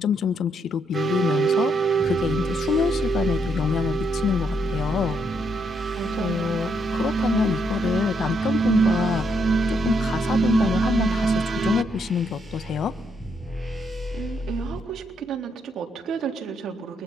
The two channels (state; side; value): normal; both; correlation 0.76